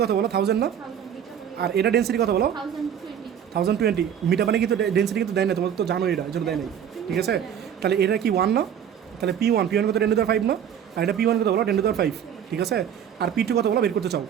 কত বলো 1000 না, আর এটা ডেন্সিটি কত বলো 1020। মিঠা পানি কিন্তু ডেন্সিটি কিন্তু দেয় না, তোমার তো জানো এটা, এজন্য দেয় নাই, ঠিক আছে। তাহলে এটা কি 1 না, তাহলে P1 কত 10⁵ না, আর এটা P1 কত বলো 10⁵, ঠিক আছে। আর P2 কত বলো বের করতে চাও,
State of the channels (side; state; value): left; quieter; 8.9 dB